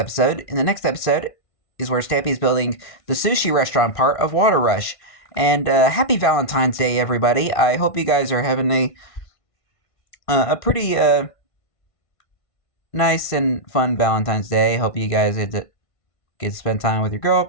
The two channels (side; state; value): right; late; 1.5 ms